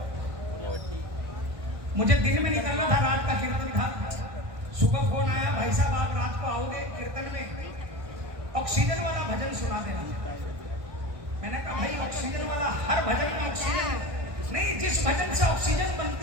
मुझे दिन में निकलना था, रात का कीर्तन था। सुबह फोन आया, भाई साहब आप रात को आओगे कीर्तन में, ऑक्सीजन वाला भजन सुना देना। मैंने कहा भाई ऑक्सीजन वाला, हर भजन में ऑक्सीजन है। नहीं, जिस भजन से ऑक्सीजन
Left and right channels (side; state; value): left; late; 1.2 ms